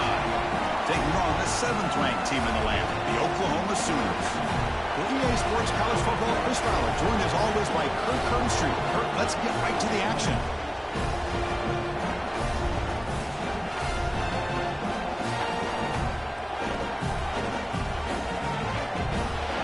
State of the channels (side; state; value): both; identical; correlation 1.00